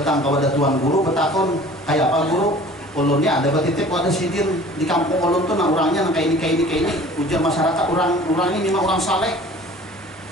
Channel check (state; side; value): normal; both; correlation 0.47